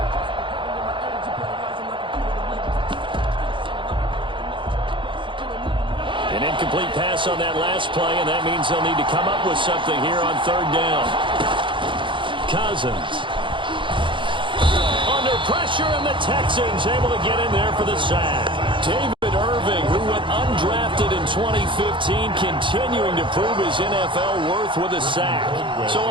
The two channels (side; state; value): left; late; 0.24 ms